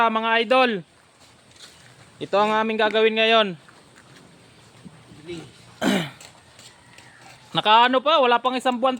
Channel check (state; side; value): identical; both; correlation 1.00